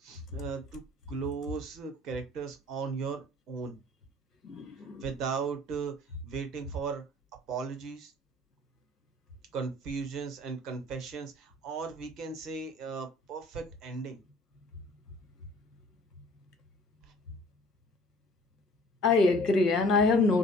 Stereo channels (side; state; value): both; normal; correlation 0.51